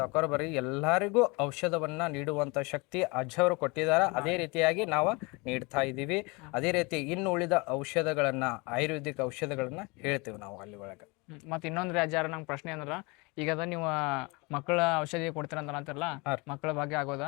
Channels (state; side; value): quieter; right; 27.4 dB